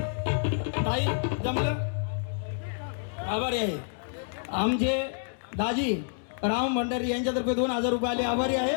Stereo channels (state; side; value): silent; right; digital silence